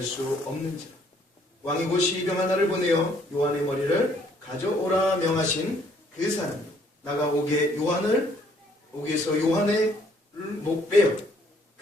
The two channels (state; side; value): normal; both; correlation 0.64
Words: 수 없는지라. 왕이 곧 시병 하나를 보내어 요한의 머리를 가져오라 명하신 그 사람이 나가 옥에서 요한의 목 빼어